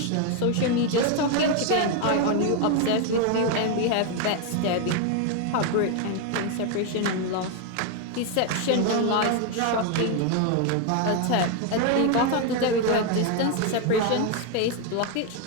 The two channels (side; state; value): both; different; correlation 0.01